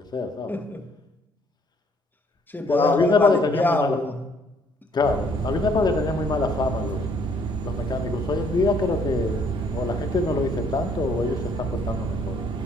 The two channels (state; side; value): normal; both; correlation 0.64